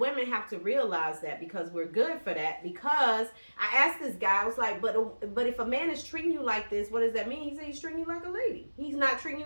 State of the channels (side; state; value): both; inverted; correlation -1.00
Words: have to realize that, because we're good for that. Because I asked this guy, I was like, but if a man is treating you like this, what does that mean? He said he's treating you like a lady. He's not treating